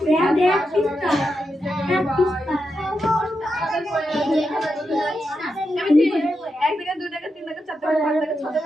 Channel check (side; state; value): both; normal; correlation 0.87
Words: এক টাকা 2 টাকা 3 টাকা 4 টাকা 5 টাকা 6